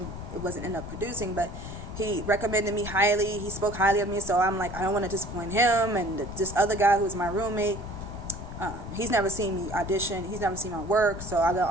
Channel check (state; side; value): noise; left; rumble, 10 dB below the sound